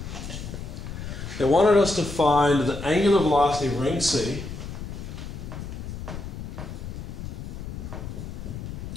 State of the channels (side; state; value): left; noise; rumble, 8 dB below the sound